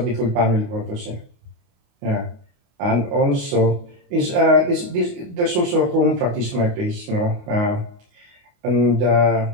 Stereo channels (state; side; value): late; left; 28 ms